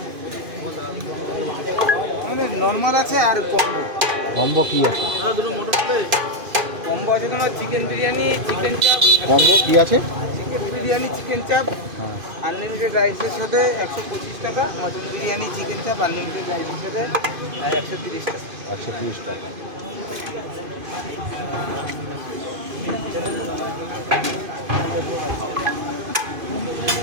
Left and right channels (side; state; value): left; late; 2.5 ms